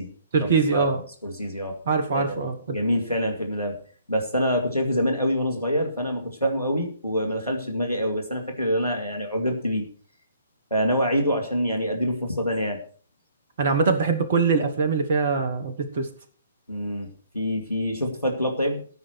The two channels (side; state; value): both; inverted; correlation -0.62